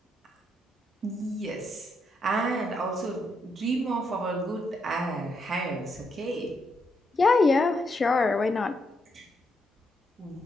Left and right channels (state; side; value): normal; both; correlation 0.79